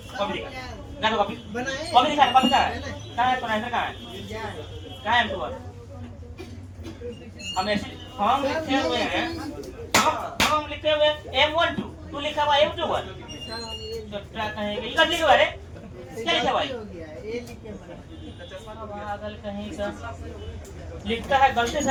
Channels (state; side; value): identical; both; correlation 1.00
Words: कॉपी दिखा, तो कॉपी कॉपी दिखा, कॉपी कहाँ है, तो नहीं कहाँ है M21? हम ऐसे फॉर्म लिखे हुए हैं, फॉर्म लिखे हुए M12, तू लिखा हुआ M21, तो क्या कहेंगे, ये लिखा हुआ है, क्या लिखा हुआ है? पागल कहीं का लिखता है, गलती